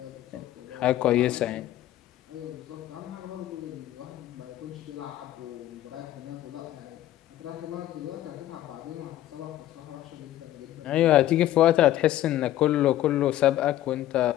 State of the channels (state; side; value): quieter; right; 13.5 dB